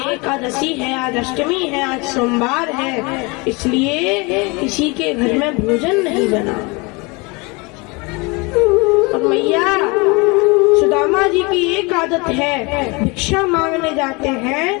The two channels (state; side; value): quieter; right; 27.4 dB